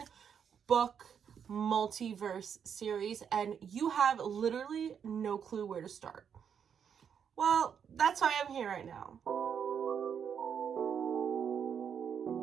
multiverse series and you have literally no clue where to start. Well, that's why I'm here right now.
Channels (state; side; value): quieter; left; 7.6 dB